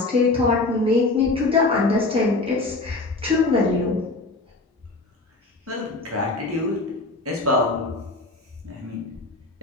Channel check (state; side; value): quieter; right; 3.3 dB